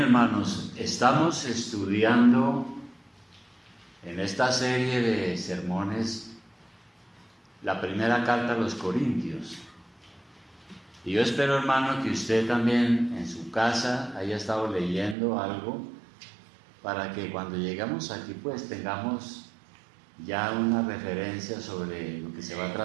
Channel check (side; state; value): left; drops out; at 15.2 s